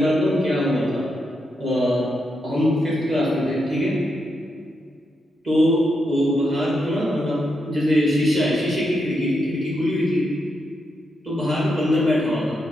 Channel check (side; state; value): both; normal; correlation 0.83